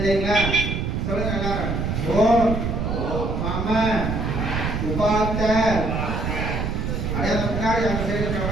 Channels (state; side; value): noise; right; rumble, 1 dB below the sound